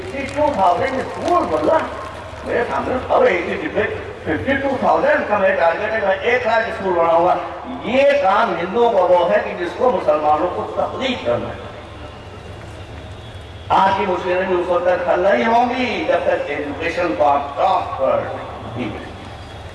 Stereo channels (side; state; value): both; identical; correlation 1.00